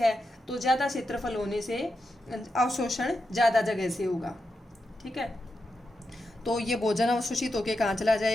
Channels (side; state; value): both; normal; correlation 0.87